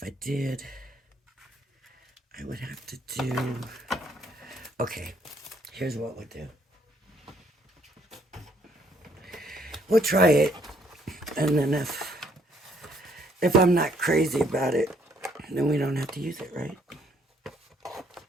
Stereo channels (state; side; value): normal; both; correlation 0.67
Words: I did, I would have to do... Okay, here's what we'll do. We'll try it, and then if I'm not crazy about it, then we don't have to use it, right?